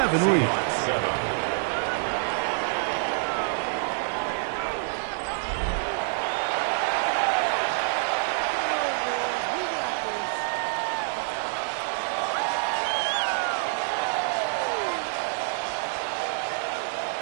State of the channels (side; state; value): left; silent; 57 dB below the other